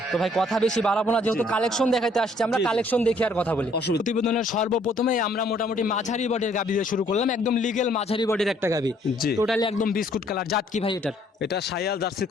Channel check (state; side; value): normal; both; correlation 0.63